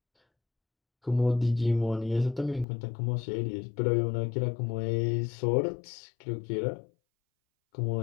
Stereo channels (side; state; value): right; drops out; at 2.7 s